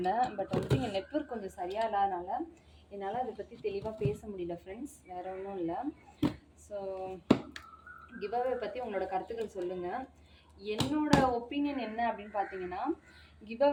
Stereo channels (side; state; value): both; identical; correlation 1.00